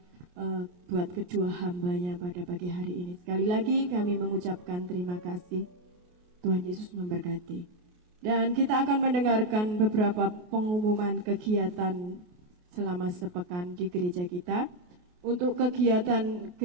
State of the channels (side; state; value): left; late; 28 ms